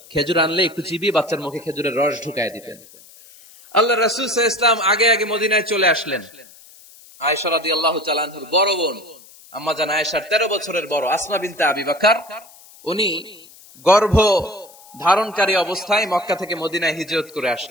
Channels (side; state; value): left; noise; hiss, 23 dB below the sound